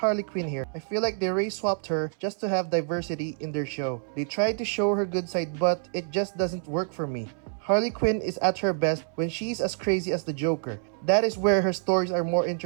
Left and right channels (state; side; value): silent; left; 60 dB below the other